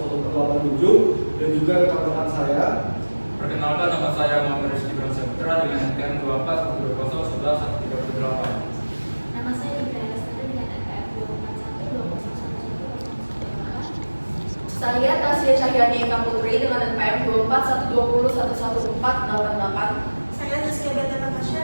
0118 dan juga rekan-rekan saya. Perkenalkan, nama saya Muhammad Rizky Saputra dengan NPM 24 11 138. Nama saya Ibrahim Lestari dengan NPM 241 Saya Tasya Cahyani Eka Putri dengan NPM 24 120 11488. Saya Rizky Beta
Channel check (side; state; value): both; inverted; correlation -1.00